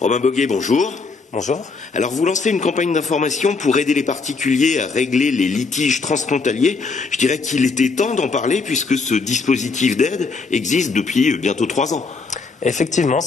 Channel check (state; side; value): quieter; right; 4.4 dB